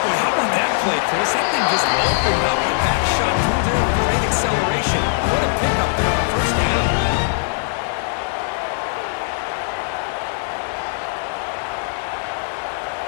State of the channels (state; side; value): silent; right; digital silence